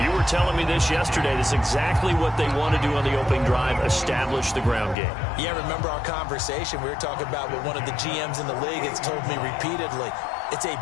You were telling me this yesterday. This is exactly what they want to do on the opening drive, establish the ground game. Yeah, remember our conversation? We were talking about what one of the GMs in the league has told me repeatedly. It's a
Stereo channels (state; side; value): drops out; right; at 5.0 s